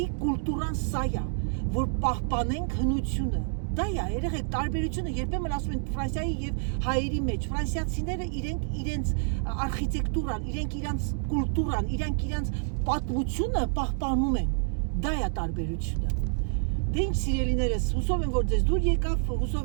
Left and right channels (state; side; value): silent; left; digital silence